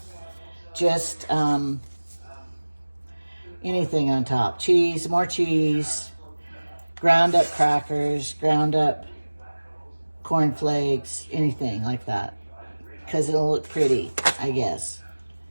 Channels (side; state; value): both; inverted; correlation -1.00